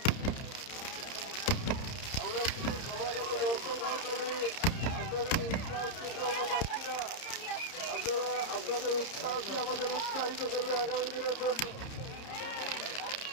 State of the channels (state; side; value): late; right; 30 ms